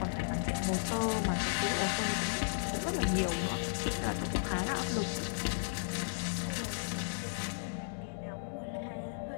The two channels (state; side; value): silent; right; 55 dB below the other